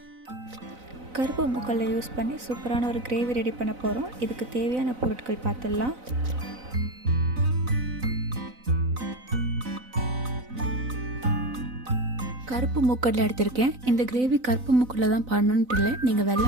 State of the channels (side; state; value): left; late; 4.0 ms